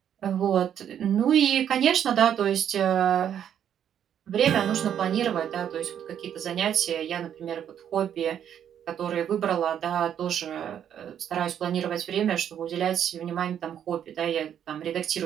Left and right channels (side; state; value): left; quieter; 9.4 dB